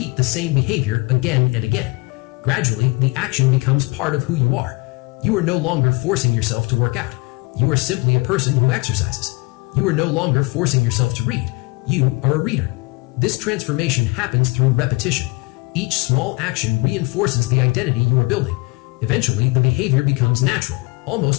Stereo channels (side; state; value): right; quieter; 25.6 dB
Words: the same behavior again and again. Gradually, the action becomes part of who you are. You are no longer forcing yourself to work out. You are simply a person who exercises. You are no longer forcing yourself to read. You are a reader. This transformation happens through repetition. Each small action reinforces the identity you are building. Eventually, the behavior becomes natural,